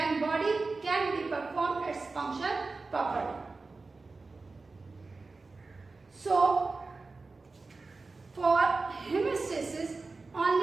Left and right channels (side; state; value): left; quieter; 3.8 dB